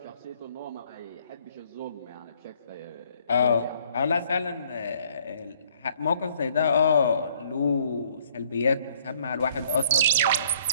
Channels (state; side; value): inverted; both; correlation -0.62